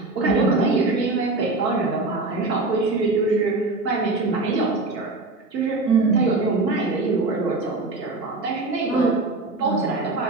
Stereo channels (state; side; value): quieter; left; 3.3 dB